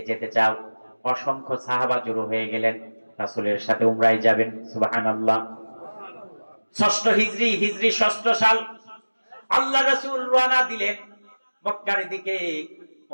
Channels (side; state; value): both; inverted; correlation -1.00